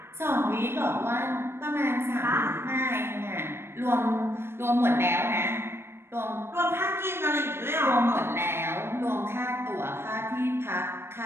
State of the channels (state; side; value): late; left; 0.12 ms